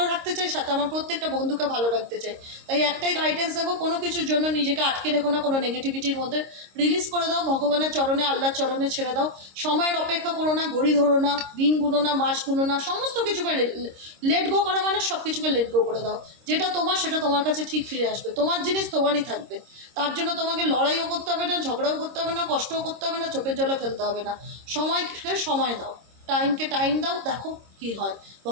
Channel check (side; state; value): left; late; 26 ms